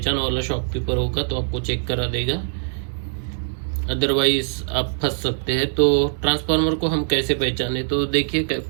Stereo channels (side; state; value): left; silent; digital silence